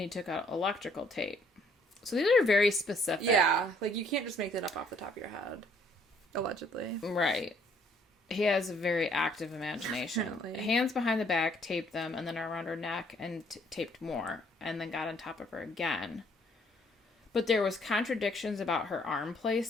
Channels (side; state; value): both; normal; correlation 0.63